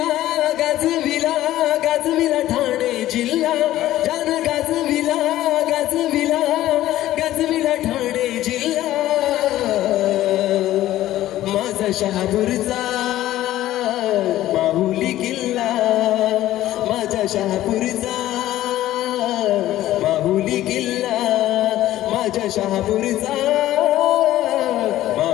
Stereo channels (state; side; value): quieter; right; 14.3 dB